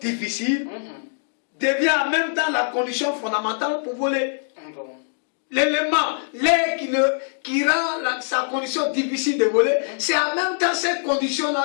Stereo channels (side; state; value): right; silent; digital silence